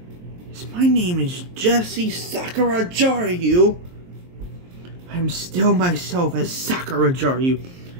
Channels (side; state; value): left; late; 23 ms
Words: My name is Jessie Sakura-Jarua. I'm still myself as Sakura-Jarua.